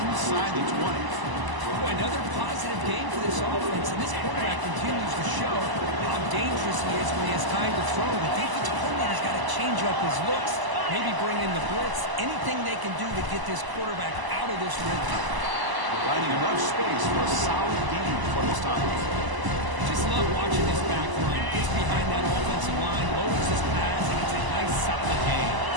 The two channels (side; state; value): left; late; 1.0 ms